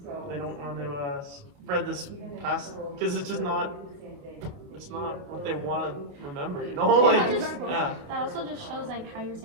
they don't want to spread this past because it's just not. It's not what they want to remember, Yeah, like exactly. yeah. That also just shows like how you're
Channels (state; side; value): late; left; 28 ms